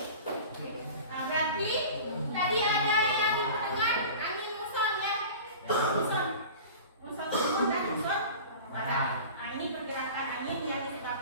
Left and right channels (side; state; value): both; inverted; correlation -0.38